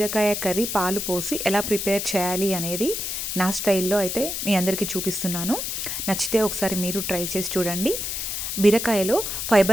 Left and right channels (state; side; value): noise; left; hiss, 3 dB below the sound